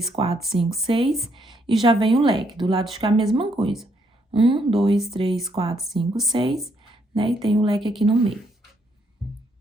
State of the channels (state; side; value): normal; both; correlation 0.73